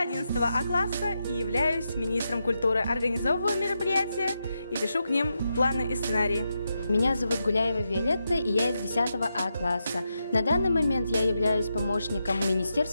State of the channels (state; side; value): inverted; both; correlation -0.86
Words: 11 А класса и являюсь министром культуры. Организовываю мероприятия и пишу к ним планы и сценарии. Меня зовут Гуляева Виолетта, и я из 10 А класса. На данный момент я являюсь помощником